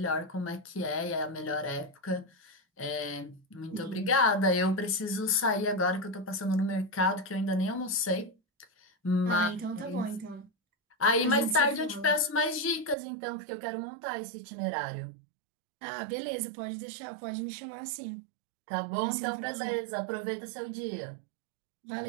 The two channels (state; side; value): drops out; left; at 13.0 s